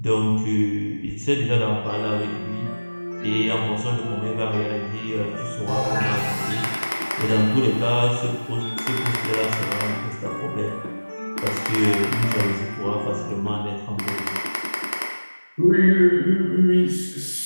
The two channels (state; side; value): inverted; both; correlation -1.00